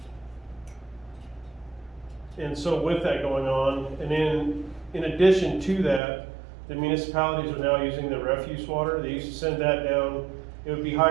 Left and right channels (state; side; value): drops out; left; at 6.0 s